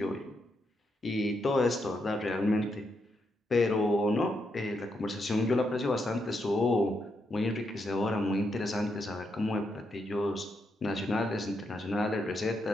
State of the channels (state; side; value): normal; both; correlation 0.81